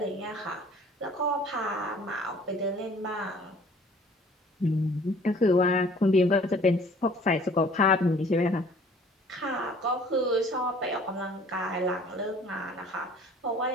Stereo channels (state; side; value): normal; both; correlation 0.53